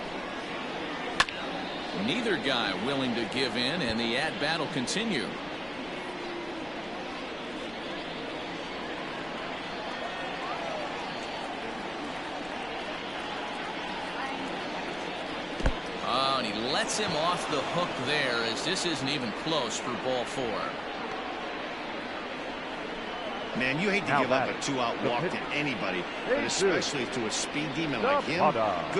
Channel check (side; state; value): left; noise; rumble, 21 dB below the sound